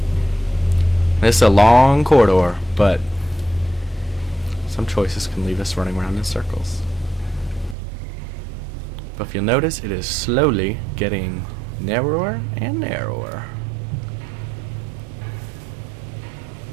This is a long corridor, but some choices can leave us running around in circles. But if you'll notice, it is slowly getting narrower and narrower.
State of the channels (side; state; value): left; drops out; at 7.8 s